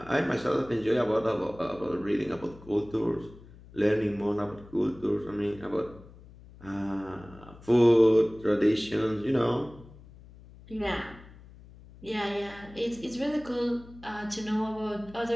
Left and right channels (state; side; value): noise; left; hum, 20 dB below the sound